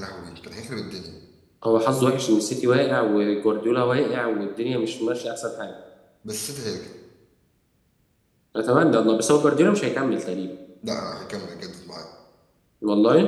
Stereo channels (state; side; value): identical; both; correlation 1.00